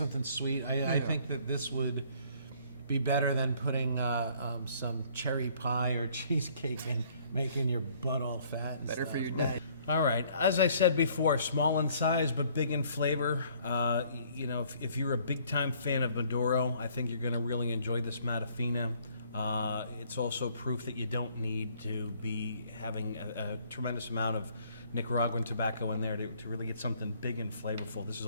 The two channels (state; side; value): inverted; both; correlation -0.61